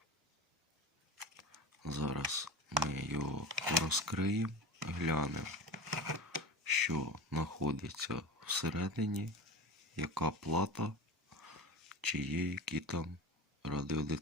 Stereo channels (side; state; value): both; normal; correlation 0.30